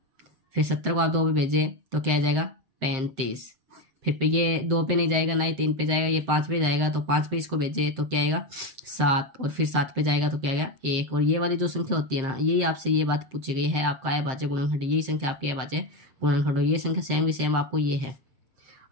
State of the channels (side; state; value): left; late; 7.6 ms